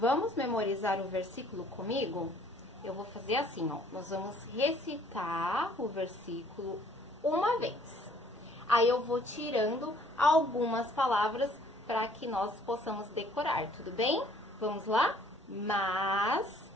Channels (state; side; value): normal; both; correlation 0.60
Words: memorizar o versículo comigo? Eu vou fazer assim, ó. Nós vamos recitar o versículo uma vez. Aí eu vou tirando algumas palavras para que nós possamos decorar, tudo bem? Vamos lá? Mas